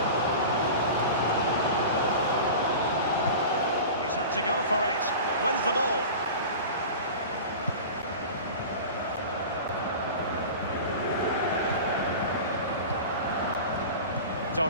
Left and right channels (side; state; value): both; inverted; correlation -0.34